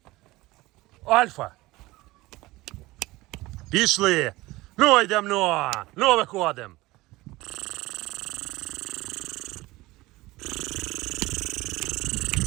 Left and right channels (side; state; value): left; quieter; 19.7 dB